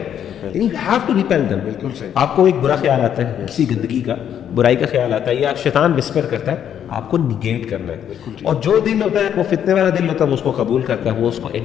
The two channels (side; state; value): right; quieter; 9.4 dB